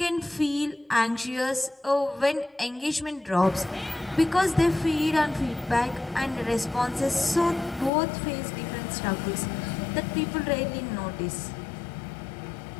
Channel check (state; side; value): drops out; right; at 7.9 s